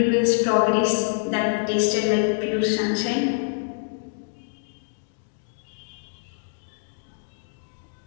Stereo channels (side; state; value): right; silent; digital silence